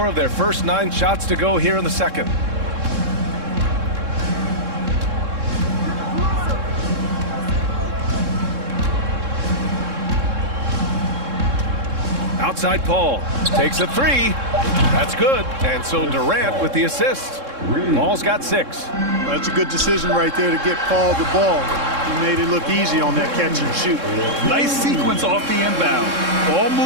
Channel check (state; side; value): late; left; 3.7 ms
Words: of their first 9 shots to go here in the second. Outside Paul. Takes a 3. That's good. And so Durant with the assist. Paul's got 6. That's a good decision right there to get Paul the ball. He made it look easy on that catch and shoot. Nice sequence off the inbound. Ball